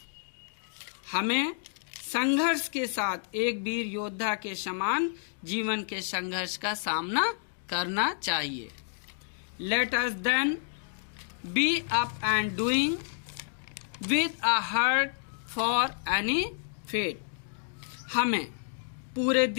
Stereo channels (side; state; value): right; silent; digital silence